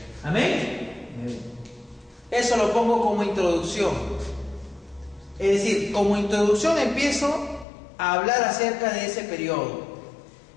¿Amén? Eso lo pongo como introducción. Es decir, como introducción empiezo a hablar acerca de ese periodo.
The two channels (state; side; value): drops out; right; at 7.7 s